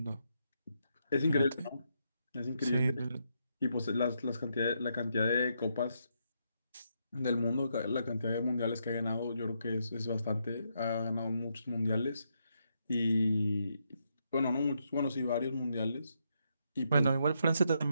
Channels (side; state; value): both; inverted; correlation -0.79